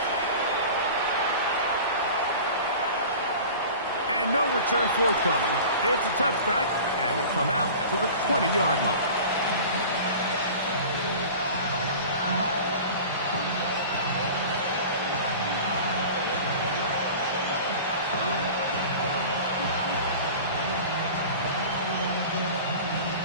And no return forthcoming. It's a touchback and will come out to the 20-yard line.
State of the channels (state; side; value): inverted; both; correlation -0.38